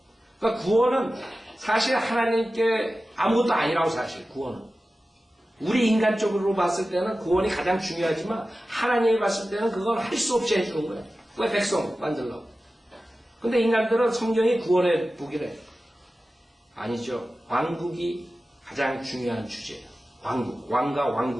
그러니까 구원은 사실 하나님께 아무것도 아니라고 사실 구원은. 우리 인간적으로 봤을 때는 구원이 가장 중요하지만 하나님이 봤을 때는 그건 할 수 없이 해주는 거예요. 왜 백성 만들려고. 근데 인간들은 성경이 구원의 복이래. 아니죠. 왕국이 가장 중요한 주제예요. 왕국, 왕과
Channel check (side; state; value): both; normal; correlation 0.95